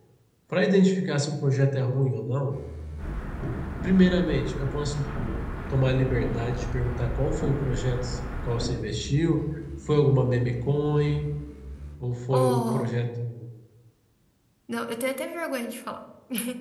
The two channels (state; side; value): identical; both; correlation 1.00